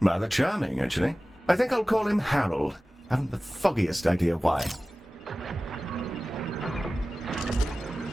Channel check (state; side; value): normal; both; correlation 0.97